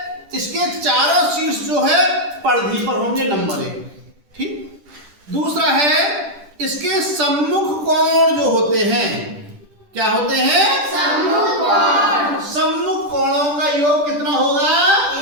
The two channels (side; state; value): left; late; 10 ms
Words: इसके चारों शीर्ष जो है परिधि पर होंगे, नंबर 1। ठीक। दूसरा है इसके सम्मुख कोण जो होते हैं, क्या होते हैं? सम्मुख कोण। सम्मुख कोणों का योग कितना होगा?